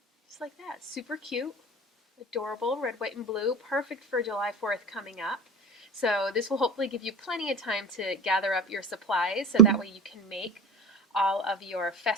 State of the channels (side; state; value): both; normal; correlation 0.32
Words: Just like that. Super cute, adorable, red, white, and blue. Perfect for July 4th coming up. So this will hopefully give you plenty of time to gather up your supplies so that way you can make all of your